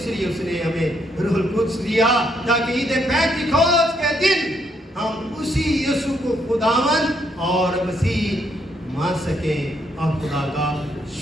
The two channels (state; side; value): normal; both; correlation 0.74